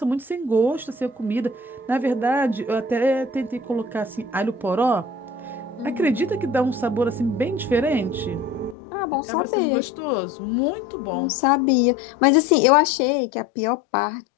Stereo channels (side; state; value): right; drops out; at 8.8 s